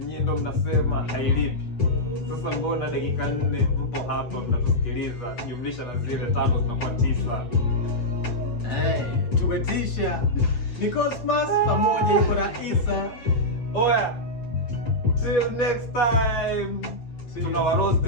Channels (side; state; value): right; late; 8.6 ms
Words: ndo mnasema hailipi? Sasa mbona dakika 4 mpo hapa mnatusikiliza, jumlisha na zile 5 zinakuwa 9. Tumetisha. Ni Cosmas pamoja yuko na Isa. Oya, till next time. Tunawaroast